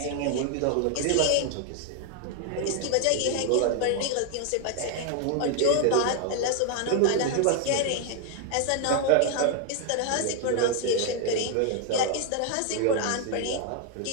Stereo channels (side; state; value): both; different; correlation 0.00